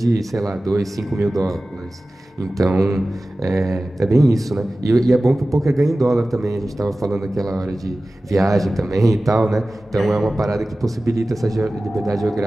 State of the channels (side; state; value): both; normal; correlation 0.96